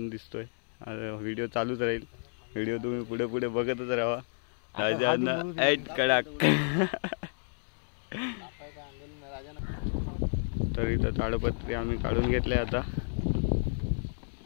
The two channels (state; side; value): silent; right; 57 dB below the other